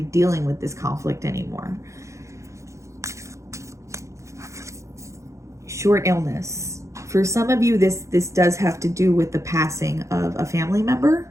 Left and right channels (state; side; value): late; left; 0.15 ms